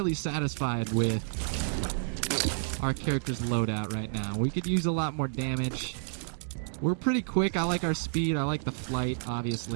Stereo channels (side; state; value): left; silent; digital silence